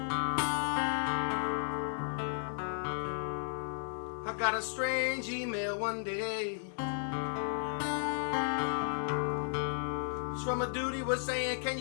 I got a strange email one day. It's from a dude. He was saying, can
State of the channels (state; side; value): silent; right; digital silence